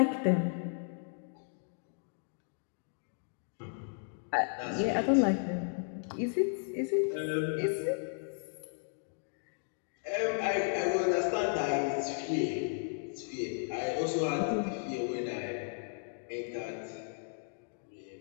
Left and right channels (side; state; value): right; silent; 55 dB below the other